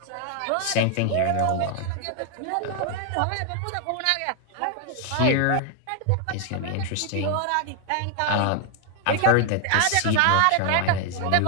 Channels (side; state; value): both; different; correlation 0.00